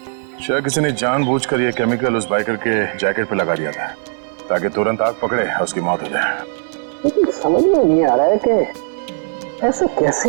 शायद किसी ने जानबूझकर ये केमिकल उस बाइकर के जैकेट पे लगा दिया था ताकि तुरंत आग पकड़े और उसकी मौत हो जाए। लेकिन समझ में नहीं आ रहा है कि ऐसे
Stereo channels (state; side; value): silent; left; 59 dB below the other